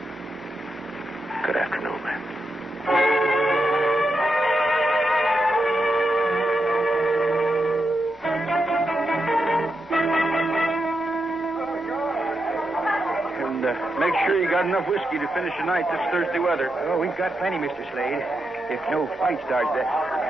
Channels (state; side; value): normal; both; correlation 0.86